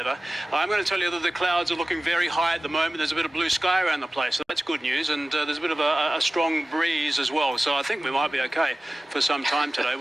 I'm going to tell you that the clouds are looking very high at the moment. There's a bit of blue sky around the place, so that's good news. And there's a bit of a strong breeze as well. So I think we might be okay for some time today,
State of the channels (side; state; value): both; normal; correlation 0.96